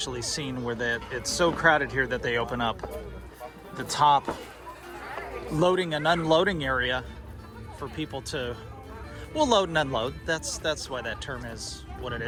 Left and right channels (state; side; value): identical; both; correlation 1.00